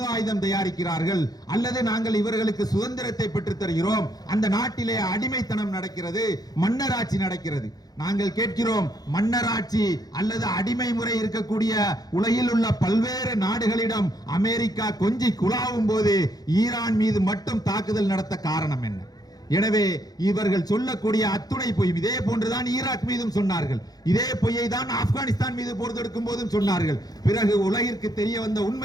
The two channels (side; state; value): right; late; 0.19 ms